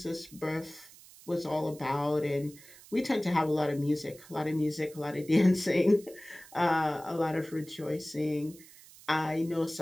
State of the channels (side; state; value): right; noise; hiss, 21 dB below the sound